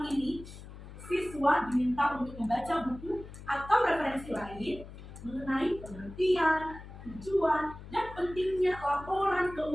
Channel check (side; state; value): left; noise; hum, 15 dB below the sound